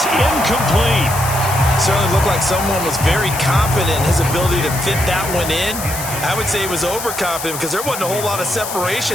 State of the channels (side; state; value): left; noise; hiss, 7 dB below the sound